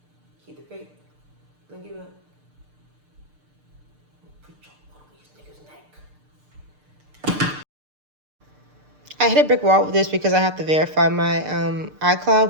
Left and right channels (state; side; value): late; left; 6.7 ms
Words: Keep the faith. Don't give up. Put your foot on these niggas' neck. I hit a brick wall with this because I have to verify my